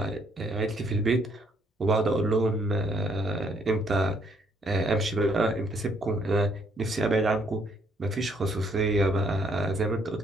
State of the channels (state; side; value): normal; both; correlation 0.69